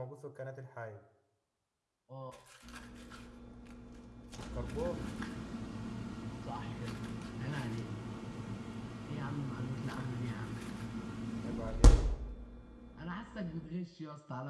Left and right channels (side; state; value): both; identical; correlation 1.00